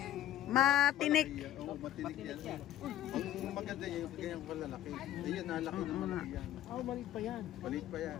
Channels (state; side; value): quieter; right; 12.6 dB